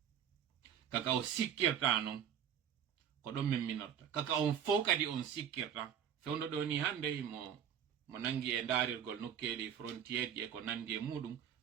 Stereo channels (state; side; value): quieter; left; 8.8 dB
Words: kaka o sikkirta non ko ɗon min minorta kaka on fof kadi on sikkirta fewndo ɗo ni hande mo nangi e daarirgol nokkeli frontiére ji e ko nandi e muɗum